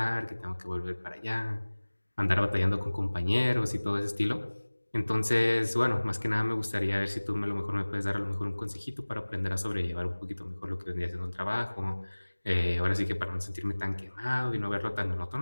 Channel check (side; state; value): both; inverted; correlation -1.00